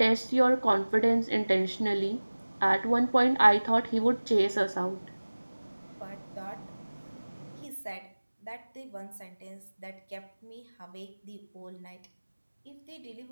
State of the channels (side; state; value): both; inverted; correlation -1.00